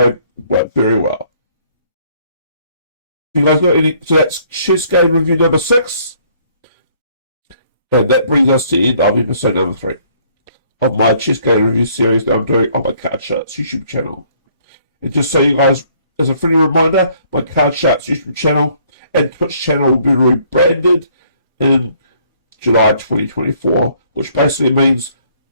very well. You guys got any? So that's chess game review number 6, and that brings us to the end of episode number 3 of my chess game review series that I'm doing on my Card Sharks YouTube channel. And just so you guys, as a friendly reminder, my Card Sharks YouTube channel and Twitch channel will be rebranded in July 2024, which basically means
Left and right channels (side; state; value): both; inverted; correlation -0.62